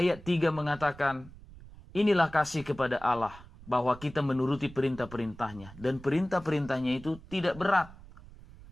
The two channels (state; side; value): noise; right; rumble, 19 dB below the sound